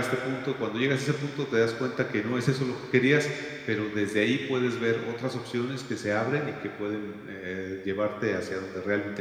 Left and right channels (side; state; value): both; identical; correlation 1.00